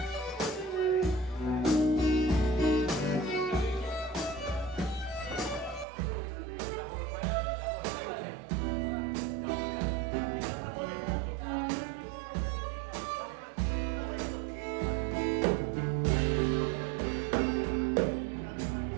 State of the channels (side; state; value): left; drops out; at 5.9 s